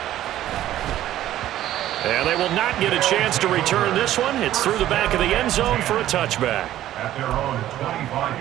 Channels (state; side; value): quieter; left; 13.1 dB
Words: And they will not get a chance to return this one. It's through the back of the end zone for a touchback. At their own